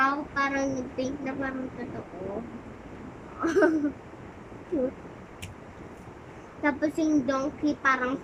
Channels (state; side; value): identical; both; correlation 1.00